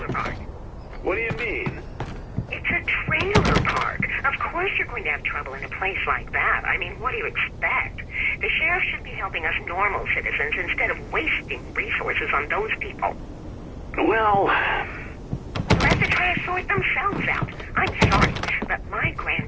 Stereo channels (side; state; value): both; identical; correlation 1.00